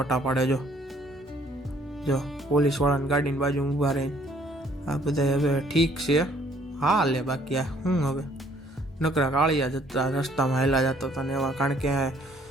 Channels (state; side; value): normal; both; correlation 0.61